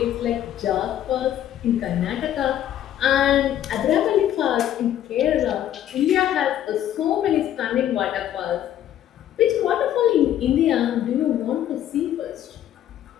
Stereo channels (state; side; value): quieter; right; 11.3 dB